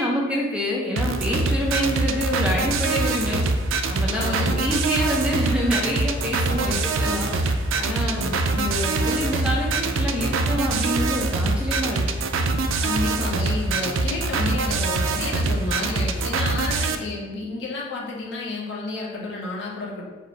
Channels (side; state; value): both; normal; correlation 0.55